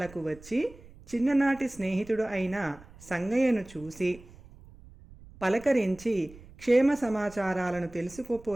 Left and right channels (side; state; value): right; noise; rumble, 21 dB below the sound